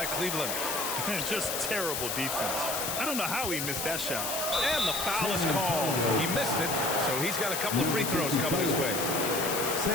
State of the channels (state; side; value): noise; left; hiss, 2 dB below the sound